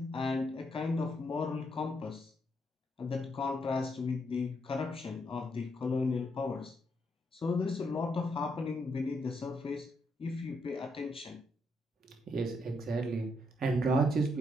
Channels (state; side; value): normal; both; correlation 0.77